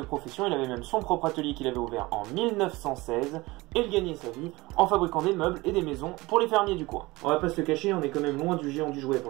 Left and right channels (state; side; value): quieter; left; 21.4 dB